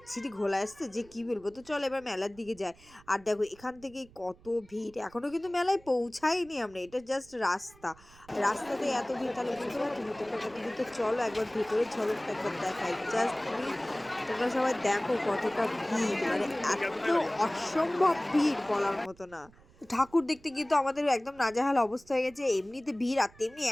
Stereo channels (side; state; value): right; noise; rumble, 26 dB below the sound